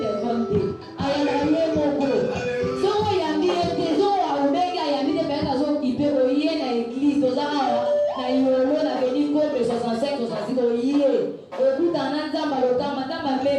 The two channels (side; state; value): both; identical; correlation 1.00